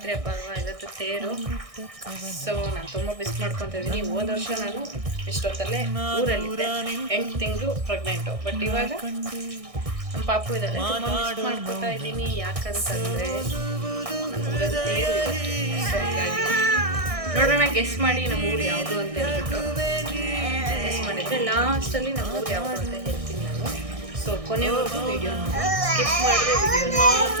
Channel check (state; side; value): late; left; 1.6 ms